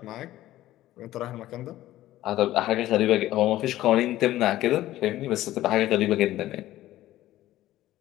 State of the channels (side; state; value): right; quieter; 14.9 dB